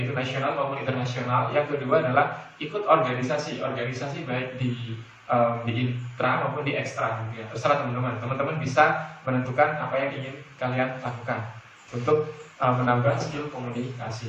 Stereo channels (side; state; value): both; identical; correlation 1.00